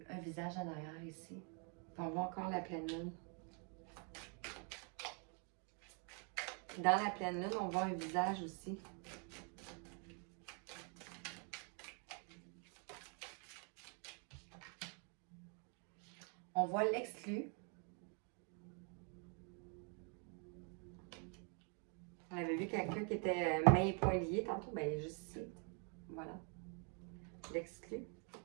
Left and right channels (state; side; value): quieter; left; 39.0 dB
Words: visage en arrière ici. On voit encore la pleine lune. Dans la pleine lune, on voit un visage aussi. On voit l'exclu. On avait vu quelqu'un qui était mains et poings liés tantôt. Ben, il est juste ici. Voilà. L'exclu.